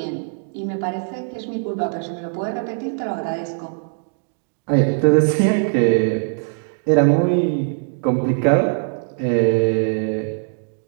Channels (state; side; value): silent; left; digital silence